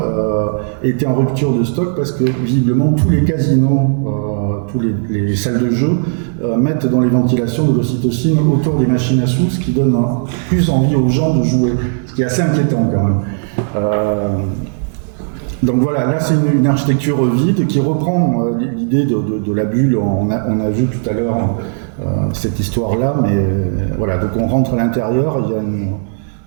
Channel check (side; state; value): left; silent; digital silence